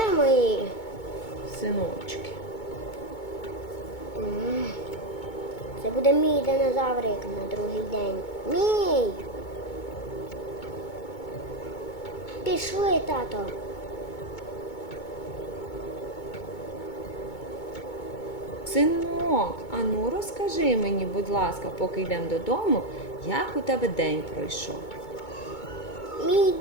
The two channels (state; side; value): late; right; 2.2 ms